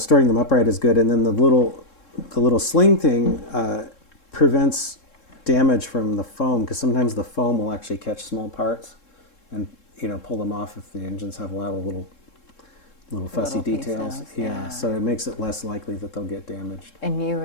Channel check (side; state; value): right; late; 3.7 ms